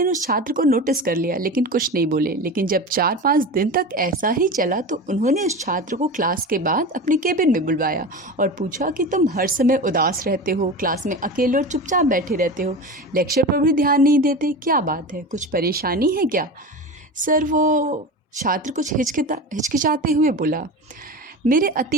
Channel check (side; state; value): both; normal; correlation 0.28